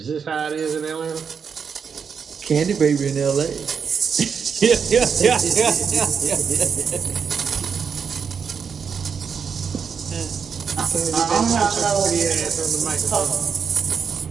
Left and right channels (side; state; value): left; quieter; 6.4 dB